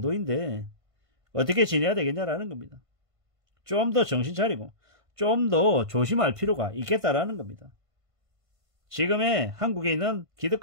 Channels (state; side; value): late; left; 1.5 ms